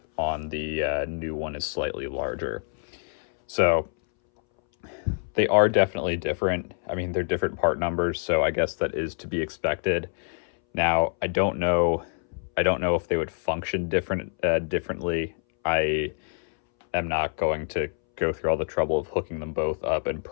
on the new one is slightly larger. So they are definitely different. I mean, they're different part numbers, so I guess that is to be expected. Now, I don't know if they would function differently. I am not going to go through all the trouble of hooking them both up and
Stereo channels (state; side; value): silent; right; 61 dB below the other